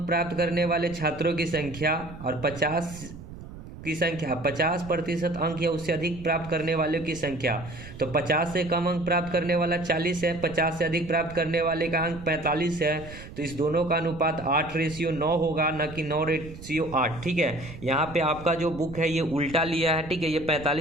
प्राप्त करने वाले छात्रों की संख्या और 50% अंक या उससे अधिक प्राप्त करने वालों की संख्या। तो 50 से कम अंक प्राप्त करने वाला 40 है, 50 से अधिक प्राप्त करने वाले का अंक 45 है। तो इस दोनों का अनुपात 8/9 होगा, न कि 9/8। ठीक है, यहाँ पे आपका जो बुक है ये उल्टा लिया है। ठीक है, ये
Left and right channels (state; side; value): noise; right; rumble, 14 dB below the sound